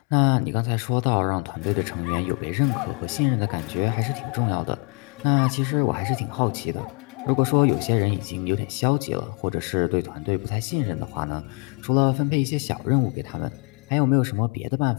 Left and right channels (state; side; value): quieter; right; 34.5 dB